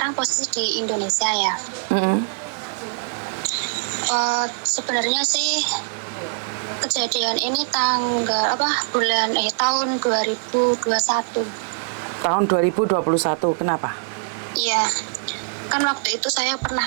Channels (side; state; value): left; silent; 64 dB below the other